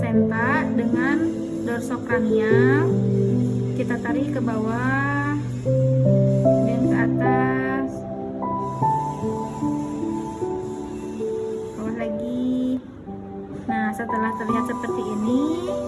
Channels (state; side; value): identical; both; correlation 1.00